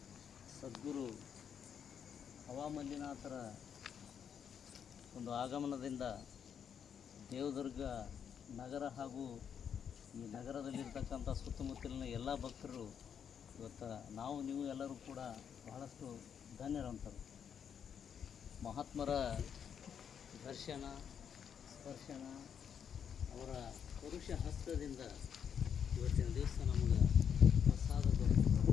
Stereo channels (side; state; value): right; quieter; 7.9 dB